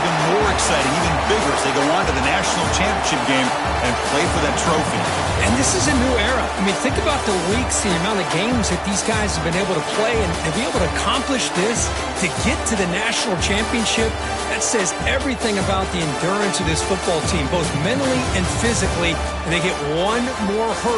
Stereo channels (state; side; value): identical; both; correlation 1.00